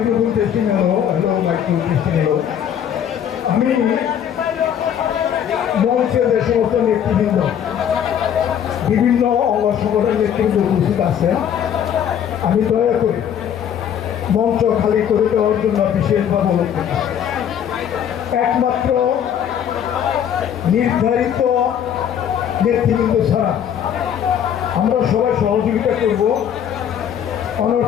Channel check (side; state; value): right; quieter; 9.2 dB